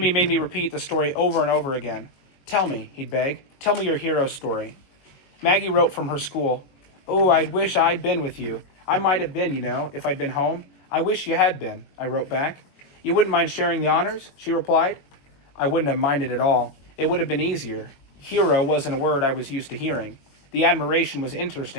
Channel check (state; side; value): late; right; 22 ms